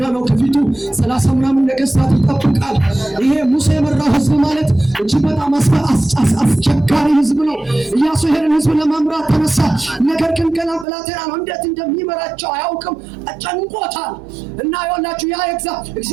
ነው። ከፊቱ 30 ምናምን ነገሥታት ይጠብቃል። ይሄ ሙሴ የመራው ህዝብ ማለት እጅግ በጣም አስቸጋሪ ህዝብ ነው። ኢያሱ ይሄንን ህዝብ ለመምራት ተነሳ። ነገር ግን ገና ብላቴና ነው። እንዴት እንደሚመራቸው አያውቅም። ጨንቆታል። እና ይኸውላችሁ ያ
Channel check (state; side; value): drops out; left; at 10.9 s